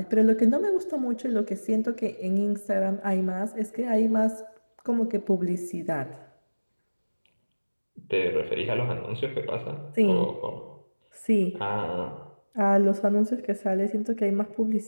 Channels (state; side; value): inverted; both; correlation -1.00